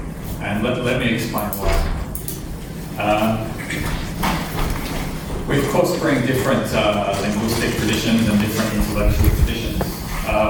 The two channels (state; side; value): identical; both; correlation 1.00